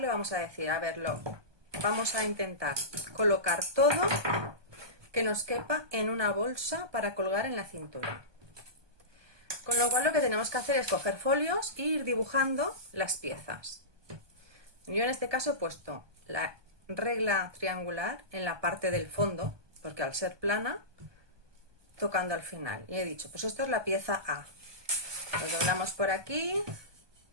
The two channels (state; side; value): late; left; 1.2 ms